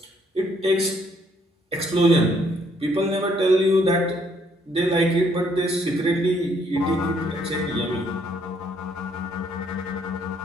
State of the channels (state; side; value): normal; both; correlation 0.68